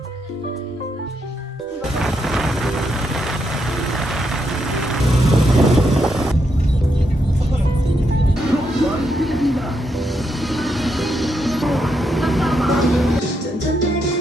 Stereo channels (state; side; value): normal; both; correlation 0.80